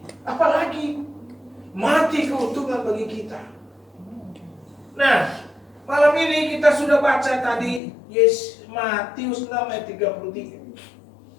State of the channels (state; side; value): drops out; right; at 7.8 s